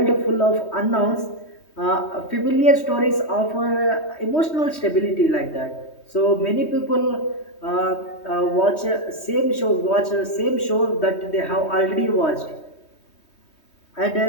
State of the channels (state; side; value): late; right; 3.2 ms